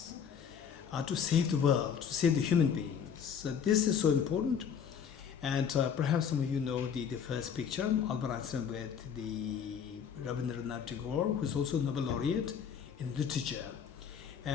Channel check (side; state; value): right; quieter; 7.5 dB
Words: to save the world, to save the human beings. So this is so important. And perhaps some of you know the first picture, Albert Einstein with the Razumevanjei Tagore, who's also Nobel laureate in literature.